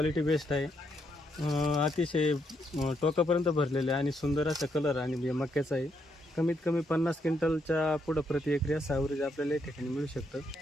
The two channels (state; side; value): normal; both; correlation 0.77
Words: बेस्ट आहे. अतिशय टोकापर्यंत भरलेले आणि सुंदर असा कलर आणि मक्याचा आहे. कमीत कमी 50 क्विंटलच्या पुढं प्रति एकरी असं ॲव्हरेज आपल्याला या ठिकाणी मिळू शकतं.